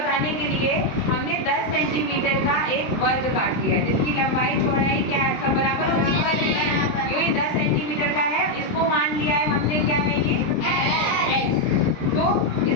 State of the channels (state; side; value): late; right; 23 ms